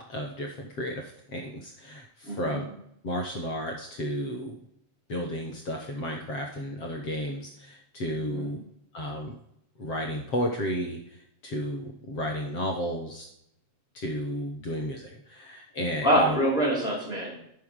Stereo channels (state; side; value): late; right; 7.6 ms